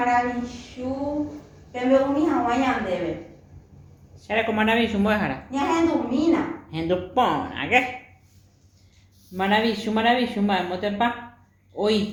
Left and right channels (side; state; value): both; identical; correlation 1.00